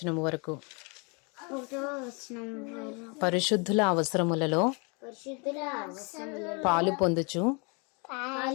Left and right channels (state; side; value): quieter; right; 32.9 dB